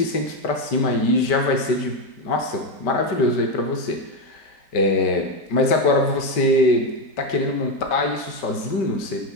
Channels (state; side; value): late; right; 5.1 ms